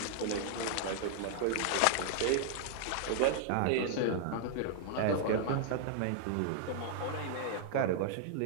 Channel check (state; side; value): different; both; correlation 0.00